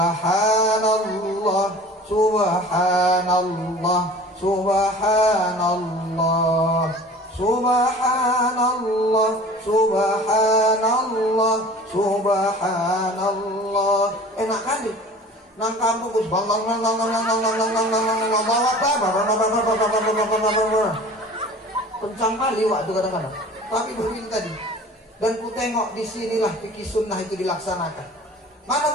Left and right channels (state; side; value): normal; both; correlation 0.43